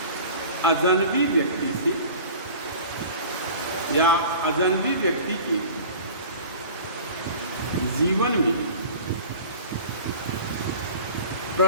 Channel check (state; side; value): inverted; both; correlation -0.41